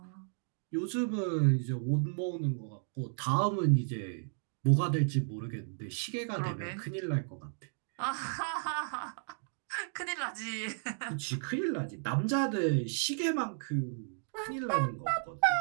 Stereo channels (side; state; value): left; silent; digital silence